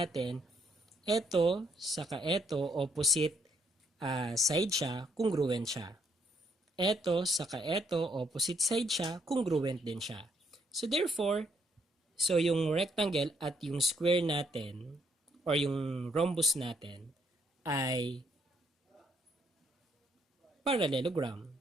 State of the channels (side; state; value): both; normal; correlation 0.71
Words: ito, saka ito, opposite side siya, congruent siya. Ito, saka ito, opposite side siya, congruent din siya. So, therefore, so yung rectangle at yung square natin, or yung rhombus natin, ay parallelogram.